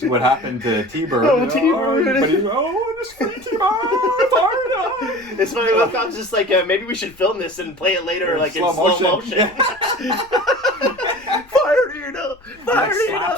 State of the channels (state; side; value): noise; left; rumble, 27 dB below the sound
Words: happened to T-Bird. T-Bird. But he's this free T-Bird. It's funny, Wincott's just like, maybe we should film this and play it later in slow motion. Fire Nina! Fire Nina!